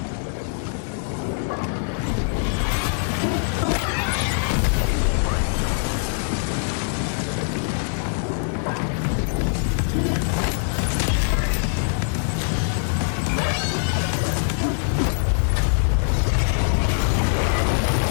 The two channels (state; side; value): silent; right; 63 dB below the other